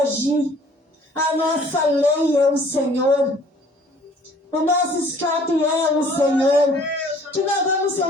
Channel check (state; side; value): normal; both; correlation 0.55